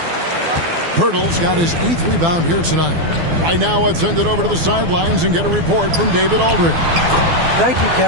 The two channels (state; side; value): late; left; 12 ms